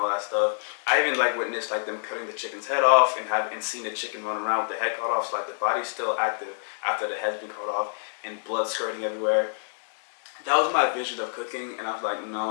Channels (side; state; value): right; silent; digital silence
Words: that stuff. I even like witnessed like them cutting the chicken's head off and seen the chicken run around with the head cut off, so like the body's still active after the head's been cut off and blood skirting everywhere. That was my vision of cooking, and I was like,